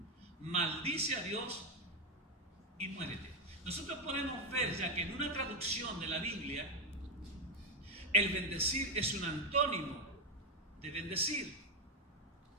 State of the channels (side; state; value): both; normal; correlation 0.06